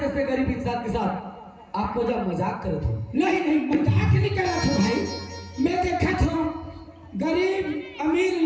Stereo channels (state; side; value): identical; both; correlation 1.00